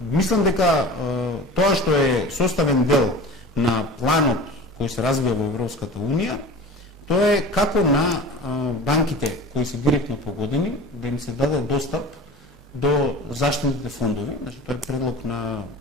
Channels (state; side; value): normal; both; correlation 0.37